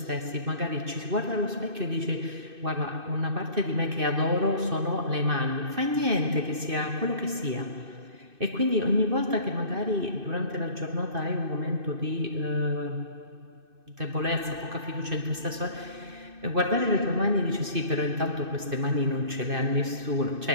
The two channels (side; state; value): left; late; 2.6 ms